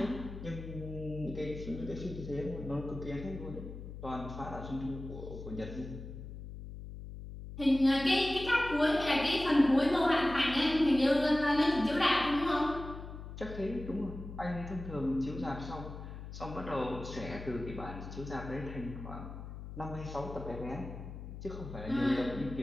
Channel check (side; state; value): left; noise; hum, 10 dB below the sound